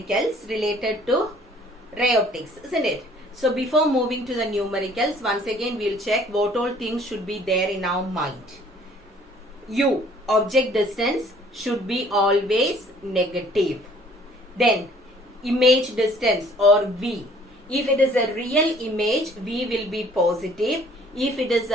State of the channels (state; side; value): normal; both; correlation 0.56